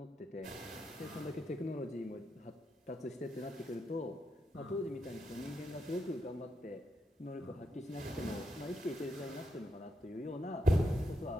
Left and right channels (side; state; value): both; normal; correlation 0.83